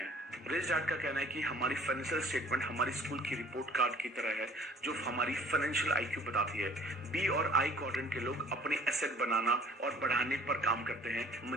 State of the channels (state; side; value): normal; both; correlation 0.53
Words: रिच डैड का कहना है कि हमारी फाइनेंशियल स्टेटमेंट हमारी स्कूल की रिपोर्ट कार्ड की तरह है जो हमारी फाइनेंशियल आईक्यू बताती है। बी और आई क्वाड्रेंट के लोग अपने एसेट बनाना और बढ़ाने पर काम करते हैं,